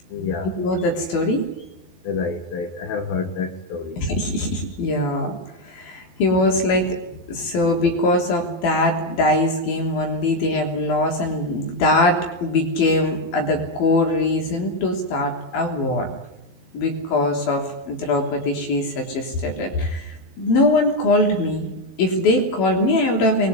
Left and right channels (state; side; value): late; right; 12 ms